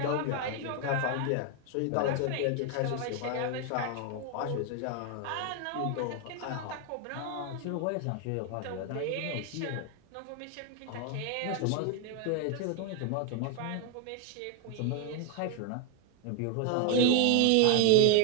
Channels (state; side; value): different; both; correlation 0.01